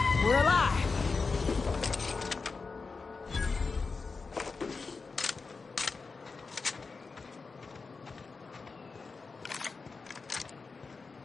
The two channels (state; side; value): quieter; right; 4.4 dB